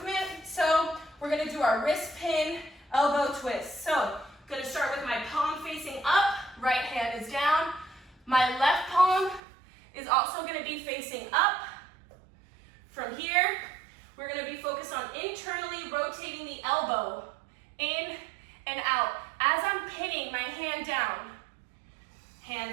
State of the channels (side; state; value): left; drops out; at 9.4 s